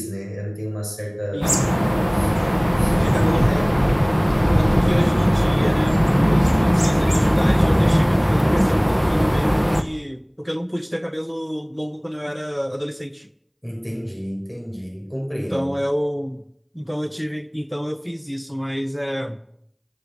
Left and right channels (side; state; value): both; identical; correlation 1.00